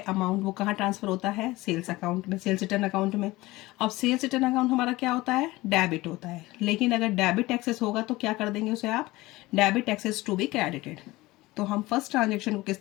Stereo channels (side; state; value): right; quieter; 19.7 dB